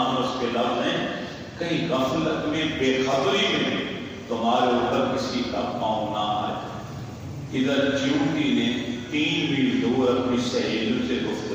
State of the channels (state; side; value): identical; both; correlation 1.00